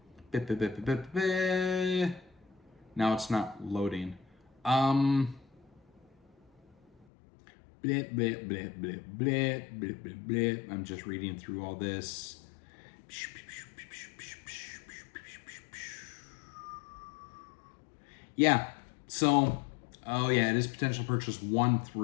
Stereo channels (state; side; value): drops out; right; at 7.1 s